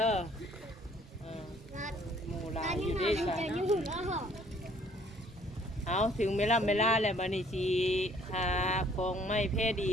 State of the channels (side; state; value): both; normal; correlation 0.60